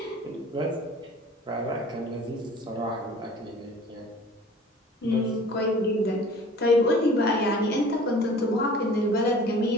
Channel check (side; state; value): both; normal; correlation 0.46